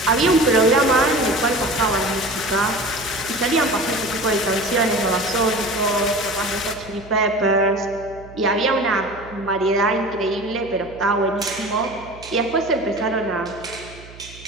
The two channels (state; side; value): noise; right; hum, 19 dB below the sound